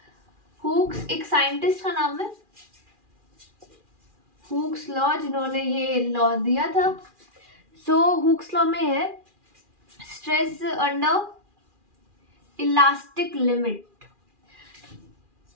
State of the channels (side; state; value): left; late; 2.4 ms